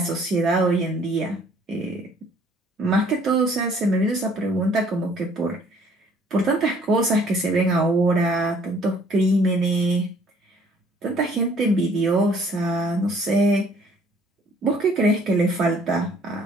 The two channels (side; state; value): both; normal; correlation 0.59